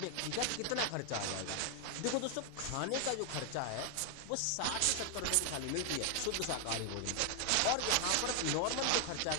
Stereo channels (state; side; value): different; both; correlation 0.00